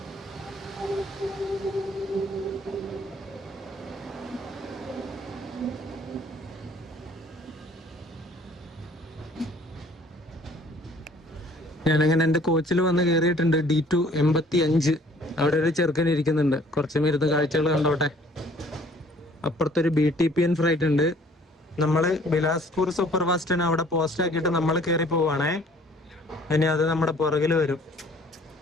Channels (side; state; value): both; normal; correlation 0.56